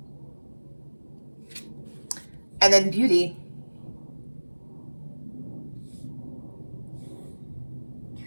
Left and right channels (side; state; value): both; inverted; correlation -1.00